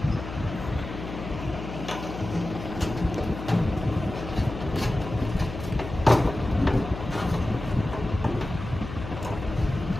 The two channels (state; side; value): noise; left; hum, 9 dB below the sound